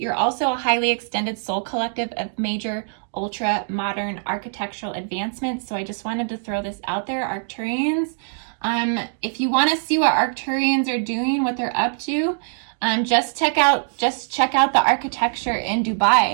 also a highly extended soul collective of major ultra-modern architectural advancements, so I just wanted to throw this out there, Arcturians. If you want to see what Arcturians are doing, what they're up to, just check out the architecture in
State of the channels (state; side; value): silent; left; digital silence